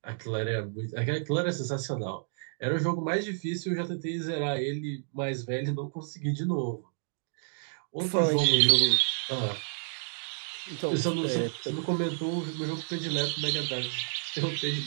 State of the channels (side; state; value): left; silent; digital silence